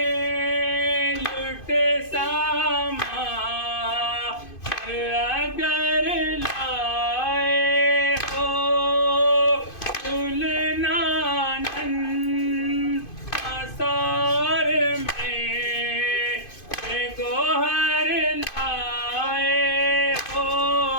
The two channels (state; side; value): late; right; 2.5 ms